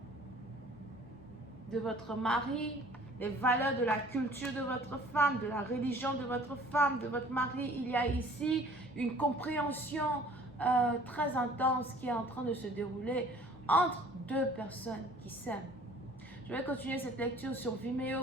de votre mari, les valeurs de la culture de votre femme, de la religion de votre femme, de votre mari. Il y a ici une compréhension très intense qui est en train de se dérouler entre deux personnes qui s'aiment. Je vais continuer cette lecture sur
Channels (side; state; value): both; normal; correlation 0.51